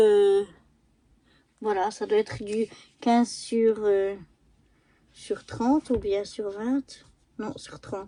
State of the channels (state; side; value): identical; both; correlation 1.00